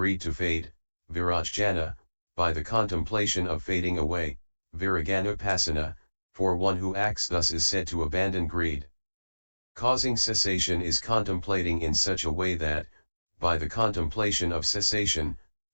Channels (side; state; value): both; inverted; correlation -1.00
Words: to fade, virajjana, by the contemplation of fading away, viraganupasana, for one who acts thus is said to abandon greed. Causing cessation is contemplating in such a way that, by the contemplation of cessation,